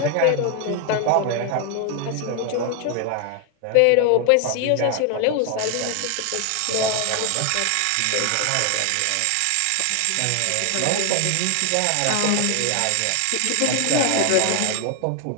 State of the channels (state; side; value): different; both; correlation 0.00